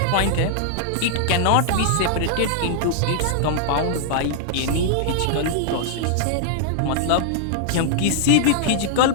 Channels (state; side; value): different; both; correlation -0.01